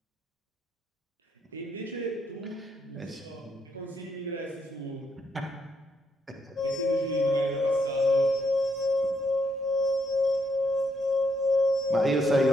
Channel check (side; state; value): both; normal; correlation 0.75